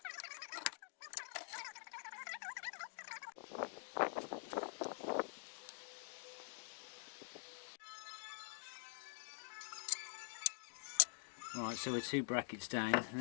Right, so we're 2 brackets down. The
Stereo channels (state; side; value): silent; right; digital silence